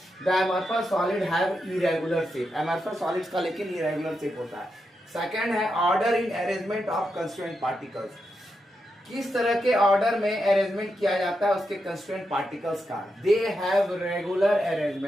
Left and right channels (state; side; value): normal; both; correlation 0.85